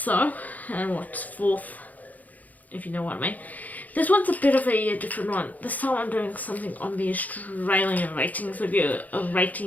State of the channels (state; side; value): late; right; 0.079 ms